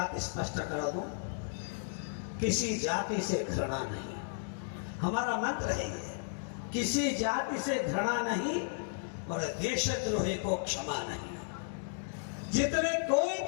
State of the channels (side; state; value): right; silent; digital silence